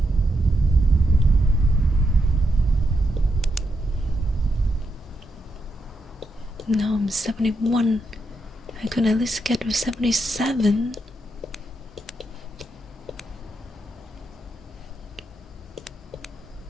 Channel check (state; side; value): normal; both; correlation 0.82